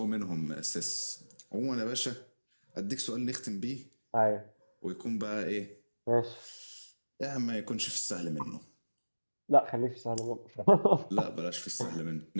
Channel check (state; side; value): inverted; both; correlation -1.00